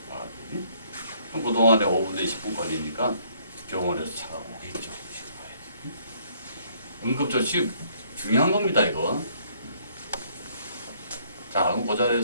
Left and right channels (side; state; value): both; inverted; correlation -0.64